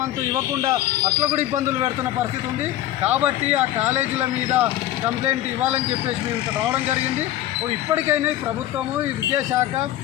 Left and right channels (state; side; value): quieter; right; 13.6 dB